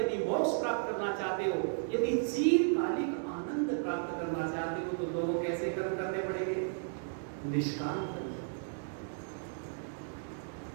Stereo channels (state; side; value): silent; left; digital silence